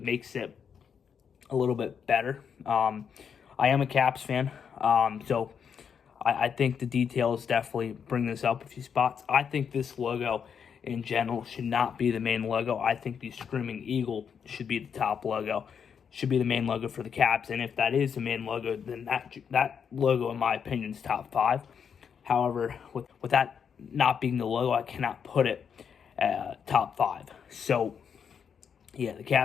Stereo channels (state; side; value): quieter; right; 7.1 dB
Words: it a little bit better. I am a Caps fan, so I think the details definitely bring this up a few spots. I think this logo in general should not be the main logo. I think the Screaming Eagle should be the top logo, should be the main logo for the Caps. And if that is the main logo, then that logo, in my opinion, is top 5. However, with that not being the logo, I cannot put it top 5. So, yeah, the